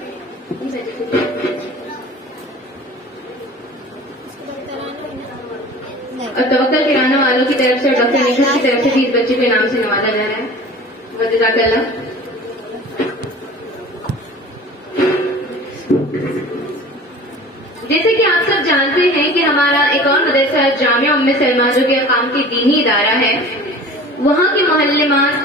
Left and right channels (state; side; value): normal; both; correlation 0.41